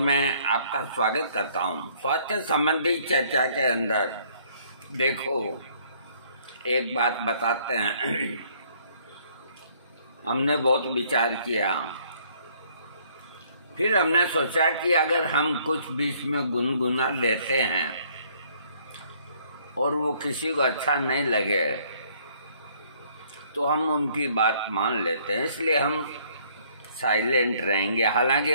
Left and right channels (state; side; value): inverted; both; correlation -0.63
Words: आपका स्वागत करता हूं। स्वास्थ्य संबंधी चर्चा के अंदर देखो, एक बात बताते हैं। हमने बहुत विचार किया, फिर हमने सोचा कि अगर हम कुछ बीच में गुनगुना लेते हैं और वो किसी को अच्छा नहीं लगे तो हम उनकी बात मान लेते हैं, इसलिए हम साइलेंट रहेंगे। हालांकि